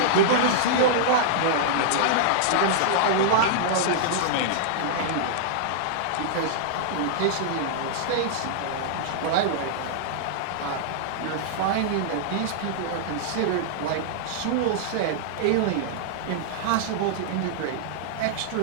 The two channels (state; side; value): different; both; correlation -0.02